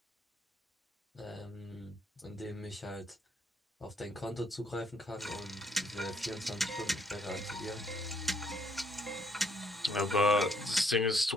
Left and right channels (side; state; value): both; normal; correlation 0.69